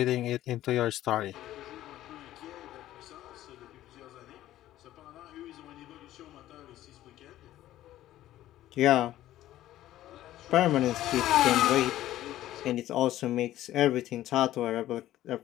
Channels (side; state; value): right; quieter; 13.9 dB